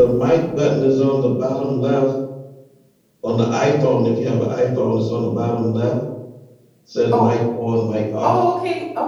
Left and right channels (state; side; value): identical; both; correlation 1.00